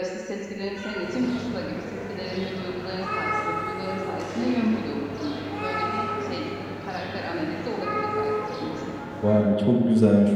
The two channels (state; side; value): identical; both; correlation 1.00